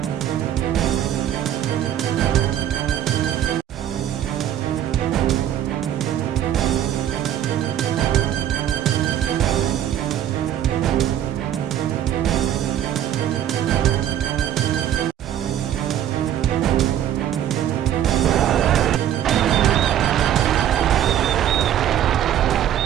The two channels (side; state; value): left; quieter; 10.9 dB